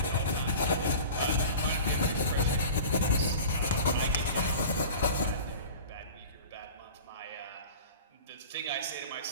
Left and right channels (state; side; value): inverted; both; correlation -0.38